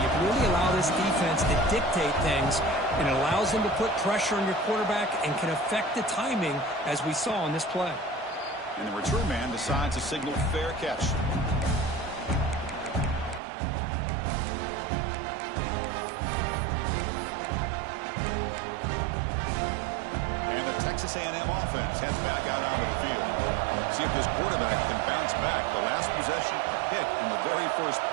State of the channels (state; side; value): drops out; left; at 13.4 s